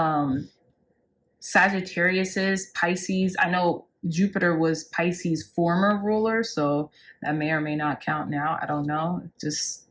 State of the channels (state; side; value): identical; both; correlation 1.00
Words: Sagittariuses, Pisces. I know Jupiter was Pisces' former ruler, so that may or may not count now. I don't know. Just